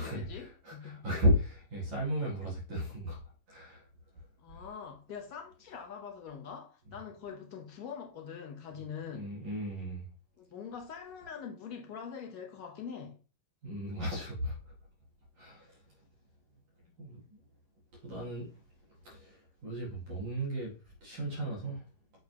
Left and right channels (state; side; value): late; left; 11 ms